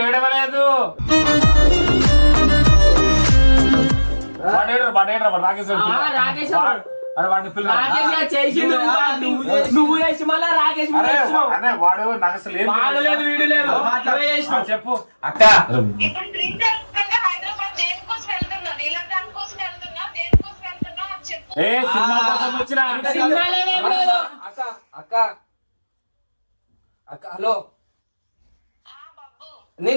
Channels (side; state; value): both; inverted; correlation -1.00